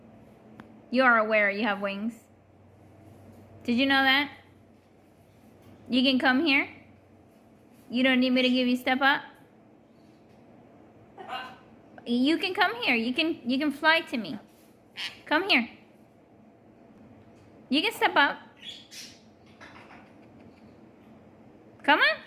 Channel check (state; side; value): identical; both; correlation 1.00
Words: You are aware you have wings. Did you know that? You can come here. You don't need me to give you step up. You can come here. You can fly to me. Come here. You can step up. Come on.